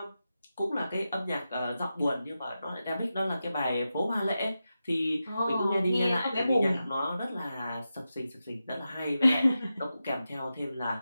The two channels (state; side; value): inverted; both; correlation -0.91